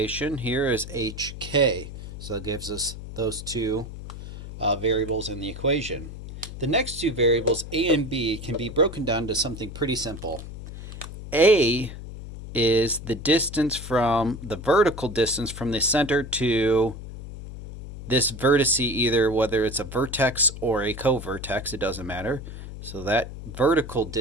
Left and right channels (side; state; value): left; noise; hum, 11 dB below the sound